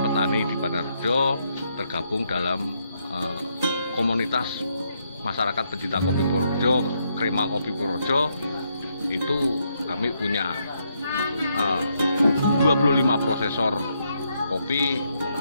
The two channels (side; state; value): both; inverted; correlation -0.77